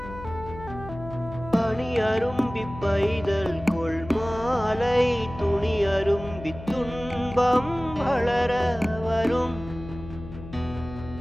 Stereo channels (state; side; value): noise; left; hum, 13 dB below the sound